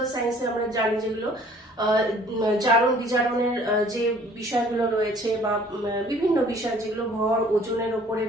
সায়েন্সে আমরা জানি যেগুলো জারণ বিজারণের যে বিষয়গুলো রয়েছে বা বিভিন্ন বিষয় যেগুলো ভর ওজনের উপরে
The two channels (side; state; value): both; normal; correlation 0.55